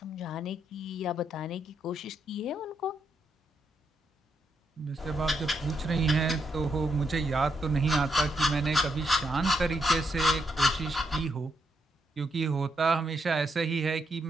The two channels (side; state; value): both; normal; correlation 0.79